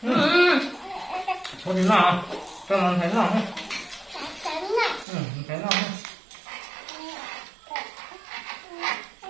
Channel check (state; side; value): drops out; left; at 5.1 s